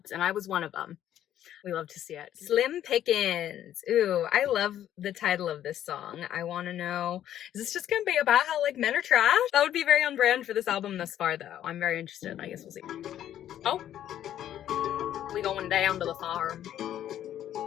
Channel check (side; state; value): right; quieter; 11.3 dB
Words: and I was one of them. We love to see it. Slim Pickins. Ooh, I love the title of this song. I want to know, is this just gonna be about how, like, men are trash? That would be very on brand for this album thus far, though. I'm very interested. I guess we'll see. Oh, we going down to the farm.